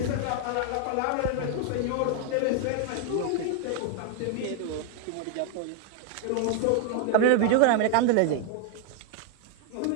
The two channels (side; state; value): both; different; correlation 0.00